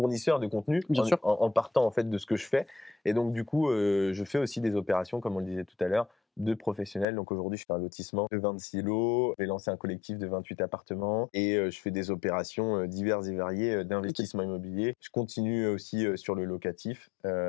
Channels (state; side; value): drops out; right; at 7.1 s